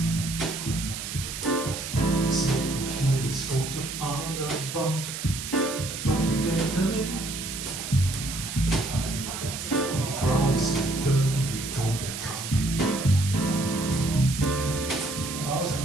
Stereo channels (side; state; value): right; noise; hiss, 7 dB below the sound